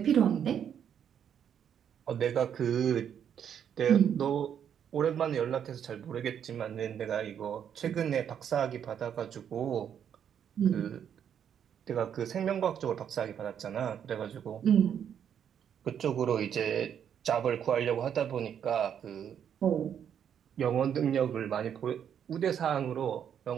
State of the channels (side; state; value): left; quieter; 8.7 dB